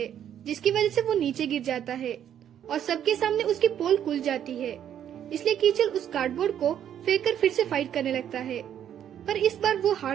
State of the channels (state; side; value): quieter; left; 9.9 dB